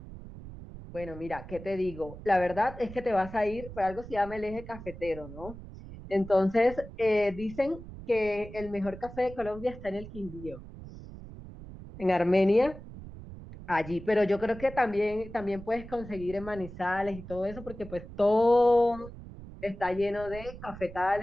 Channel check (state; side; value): noise; right; rumble, 14 dB below the sound